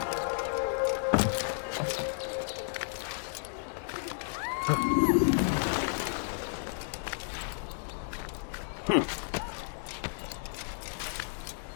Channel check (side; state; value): right; silent; digital silence